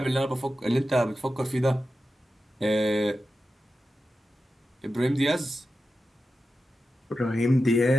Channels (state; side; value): normal; both; correlation 0.91